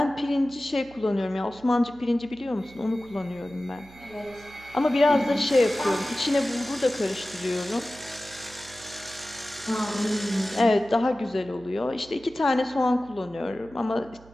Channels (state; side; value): noise; right; hum, 23 dB below the sound